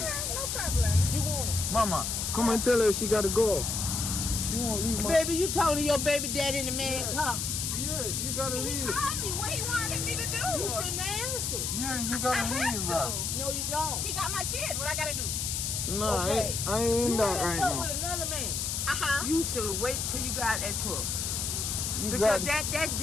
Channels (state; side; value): noise; left; hiss, 1 dB below the sound